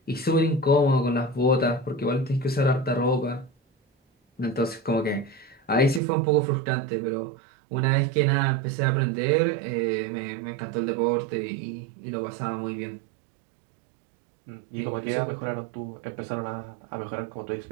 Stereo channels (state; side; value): drops out; left; at 6.0 s